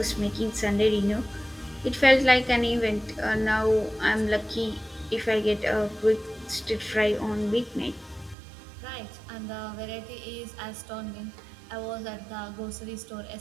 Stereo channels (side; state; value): left; drops out; at 8.3 s